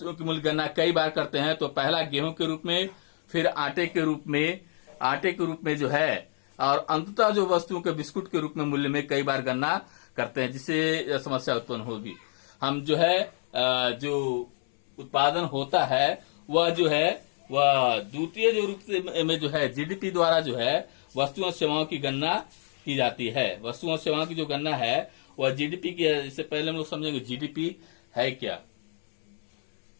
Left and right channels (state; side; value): silent; right; 60 dB below the other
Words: की मूल्य गणना कई बार करते हैं तो पहला गेहूं के रूप में, फिर आटे के रूप में जो है और अंततः जो वस्तुओं के बिस्कुट के रूप में मूल्य में कई बार गणना करते हैं जिससे समस्या उत्पन्न होगी। हम जो है जो उत्पादन होता है वह जो है वह द्वितीय जो रूप से में जो है जीडीपी द्वारा जो है वस्तुओं और सेवाओं की गणना की जाती है। वस्तुओं और सेवाओं की जो गणना है वह जीडीपी की है। इससे पहले हम लोग समझेंगे जीडीपी है क्या।